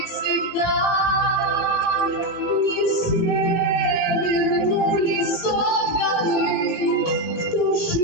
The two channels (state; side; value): late; right; 18 ms